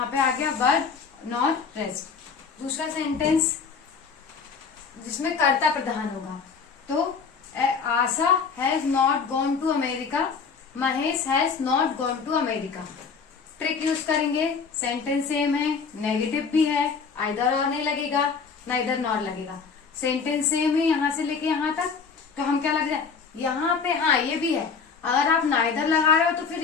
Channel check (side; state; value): right; quieter; 5.6 dB